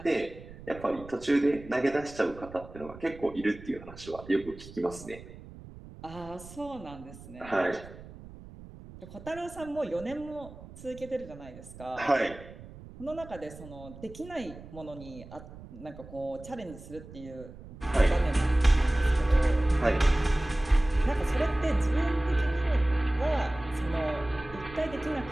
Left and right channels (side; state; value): right; noise; rumble, 17 dB below the sound